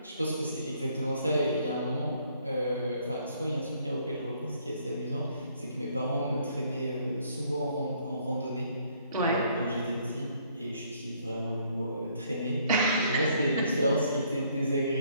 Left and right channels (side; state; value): both; inverted; correlation -0.65